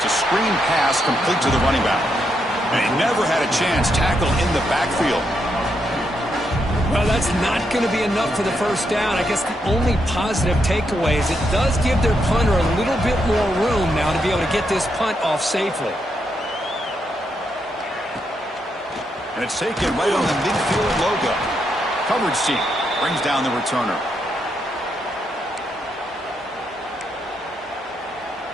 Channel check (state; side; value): normal; both; correlation 0.80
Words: a screen pass complete to the running back. And he never had a chance. Tackle in the backfield. Well, that's not going to be enough for the first down. I guess the only positive takeaway is it does give their punter a little bit more room now to be able to get this punt off safely. it's taken right on the midfield logo. Coverage team brings down the returner.